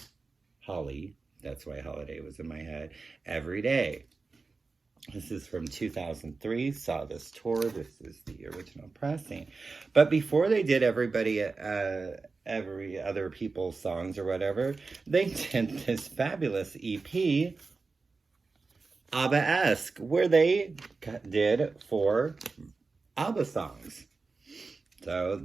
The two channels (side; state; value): left; quieter; 4.1 dB